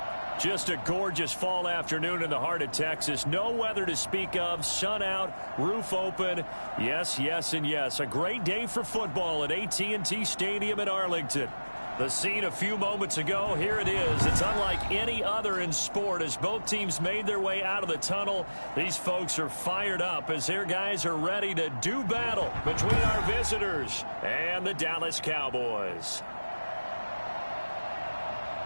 Just a gorgeous fall afternoon in the heart of Texas. No weather to speak of. Sun out, roof open. Yes, yes, and yes. A great day for football at AT&T Stadium in Arlington. The scene a few moments ago, here it is. It's unlike any other in sport as both teams made their way out of the tunnel. These folks are fired up as their guys are ready to do battle between our visitors and the Dallas Cowboys.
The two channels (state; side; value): inverted; both; correlation -1.00